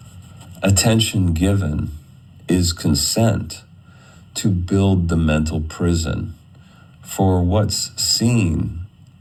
Attention given is consent to build the mental prison, for what's seen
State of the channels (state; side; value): identical; both; correlation 1.00